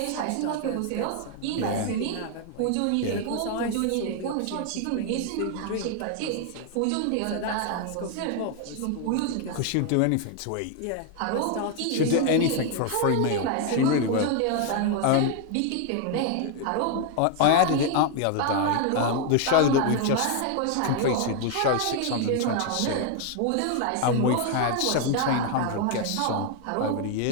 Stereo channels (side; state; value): both; different; correlation 0.01